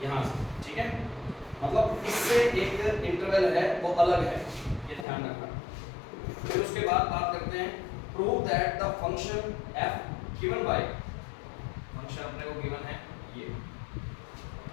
यहाँ से, ठीक है। मतलब इससे एक इंटरवल है वो अलग है, ये ध्यान रखना। फिर उसके बाद बात करते हैं, prove that the function f given by, function अपने को गिवन है ये,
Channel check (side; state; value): right; drops out; at 5.1 s